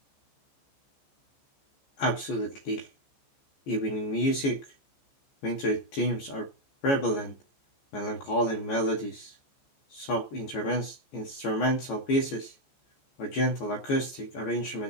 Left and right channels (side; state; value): right; late; 14 ms